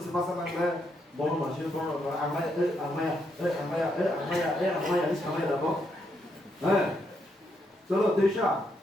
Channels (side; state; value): both; normal; correlation 0.78